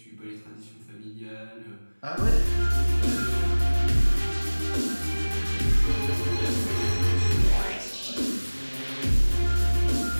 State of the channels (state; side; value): inverted; both; correlation -1.00